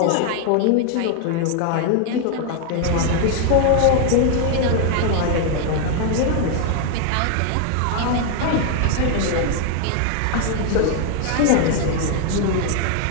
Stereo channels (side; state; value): both; different; correlation 0.00